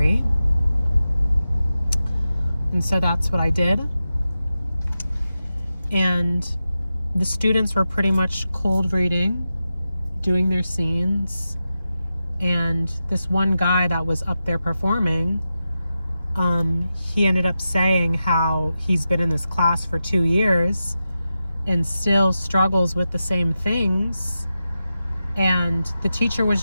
And so that's what I did. And the students were pretty much cold reading, doing their scenes. And this one guy that was up there performing, he ended up saying how he's been in this class for 2 years and still struggles with the same things. And the teacher was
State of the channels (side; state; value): both; inverted; correlation -0.91